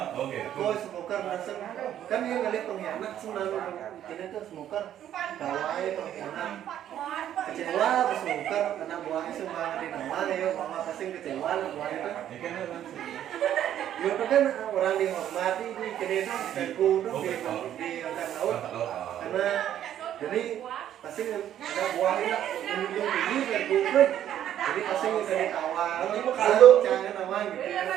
Oke. Kau smoker langsung kan dia ngeliat pengkhianat selalu ini tuh smoker bawahnya pengkhianat kecewa pas smoker anak buahnya semua di nama ya mama pasti kecewa lah buahnya tuh Ini kan langsung. ya itu kan orang dihormati di kini tuh dan kudu di angkat laut karena jadi pasti ada buahnya menunjuk tinggi dan kudu jadi pasti dari awal kalau jangan nama gitu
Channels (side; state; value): left; quieter; 11.0 dB